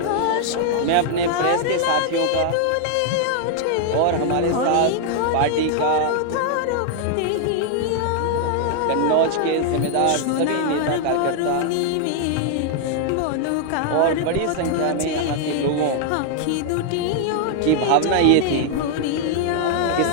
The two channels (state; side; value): different; both; correlation 0.00